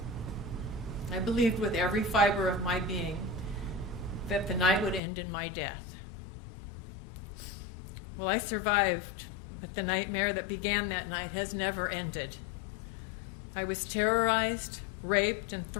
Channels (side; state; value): right; drops out; at 5.0 s